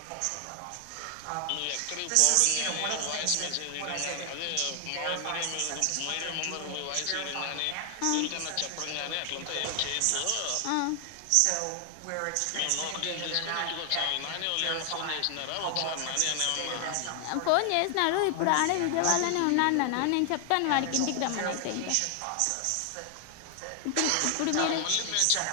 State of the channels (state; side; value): different; both; correlation 0.00